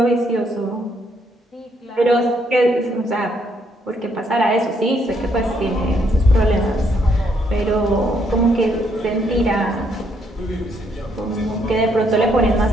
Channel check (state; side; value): normal; both; correlation 0.72